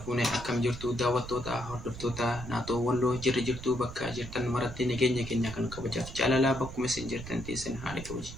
akkam jirtu daawwattoota hordoftoota naatoo walloo jirtu bakka jirtan maratti nageenya keenya kan kabajaaf jaalalaa bakkuma isin jirtan teessan haala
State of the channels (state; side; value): noise; right; rumble, 12 dB below the sound